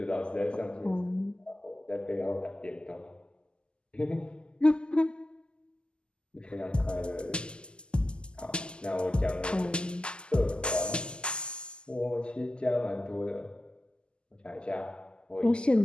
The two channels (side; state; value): right; late; 0.049 ms